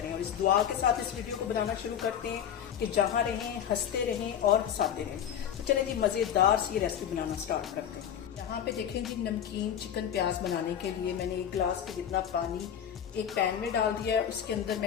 और इस दुआ के साथ इस वीडियो को बनाना शुरू करते हैं कि जहाँ रहें हंसते रहें और हंसाते रहें। तो चले जी मज़ेदार सी ये रेसिपी बनाना स्टार्ट करते हैं। यहाँ पे देखें जी, नमकीन चिकन प्याज बनाने के लिए मैंने एक गिलास के जितना पानी एक पैन में डाल दिया है। उसके अंदर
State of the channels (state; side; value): quieter; right; 9.2 dB